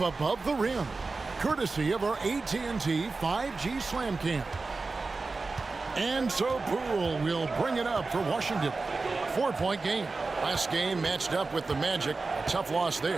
the rim, courtesy of our AT&T 5G Slam Cam. And so Poole will bring it up for Washington. 4-point game. Last game matched up with the Magic. A tough loss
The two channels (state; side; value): quieter; left; 3.8 dB